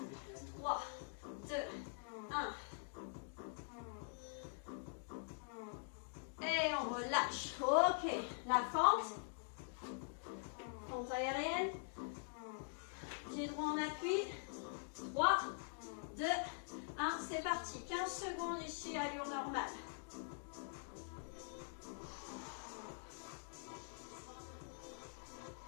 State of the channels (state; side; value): silent; right; digital silence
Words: 3, 2, 1. Et on relâche. Ok. La fente. Fente aérienne. Pied droit en appui. 3, 2, 1. C'est parti. 15 secondes ici, allure normale.